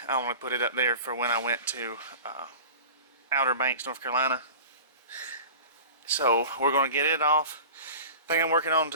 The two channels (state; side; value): inverted; both; correlation -0.37